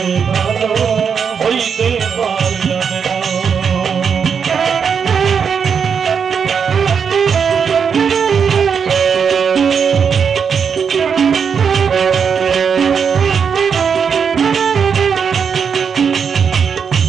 ভালো হইতে পারলাম না।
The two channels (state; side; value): quieter; left; 6.6 dB